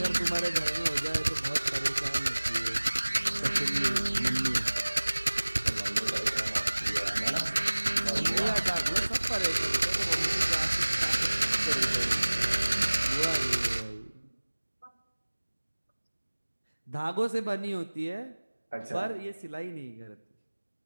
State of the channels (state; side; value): inverted; both; correlation -1.00